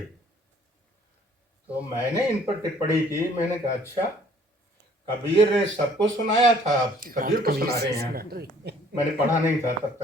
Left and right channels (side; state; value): both; normal; correlation 0.58